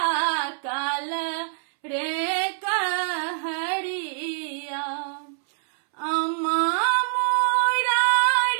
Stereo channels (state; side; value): silent; left; 62 dB below the other